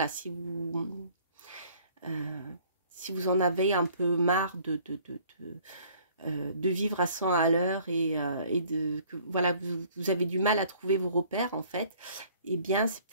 si vous en avez un peu marre de vivre à 100 à l'heure et que voilà, vous avez du mal à trouver vos repères en fait, eh bien c'est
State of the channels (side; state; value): both; inverted; correlation -0.56